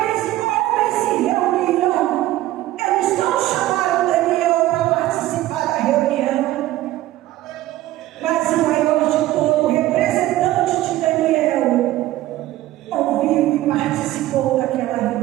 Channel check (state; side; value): quieter; left; 15.4 dB